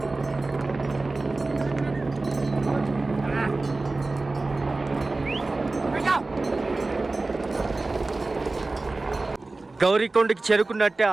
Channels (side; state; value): left; quieter; 3.3 dB